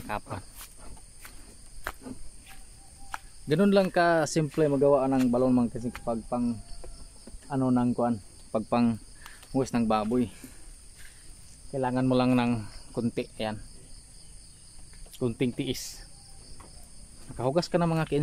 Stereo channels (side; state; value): both; identical; correlation 1.00